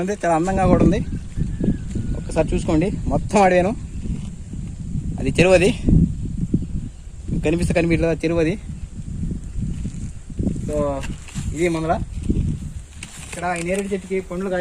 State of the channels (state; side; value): identical; both; correlation 1.00